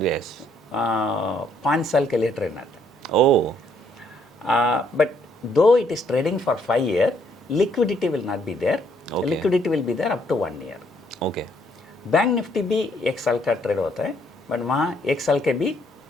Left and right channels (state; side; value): normal; both; correlation 0.68